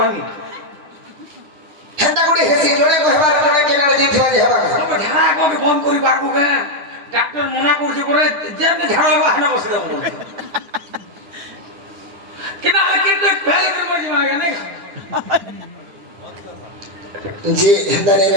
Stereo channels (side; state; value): left; late; 9.9 ms